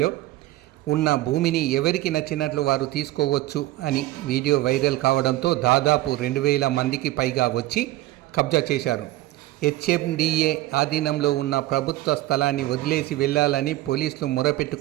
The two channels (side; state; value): left; quieter; 16.6 dB